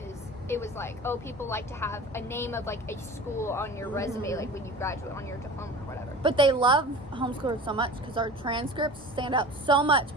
it was like, oh, people like to have a name of like a school on your resume, Mhm. like when you graduate on your diploma or whatever. But they love homeschoolers so much because our transcripts stand out so much,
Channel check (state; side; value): normal; both; correlation 0.38